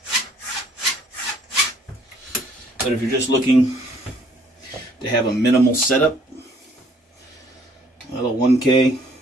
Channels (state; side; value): normal; both; correlation 0.61